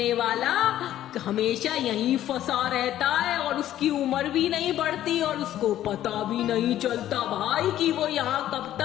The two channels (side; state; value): right; quieter; 12.5 dB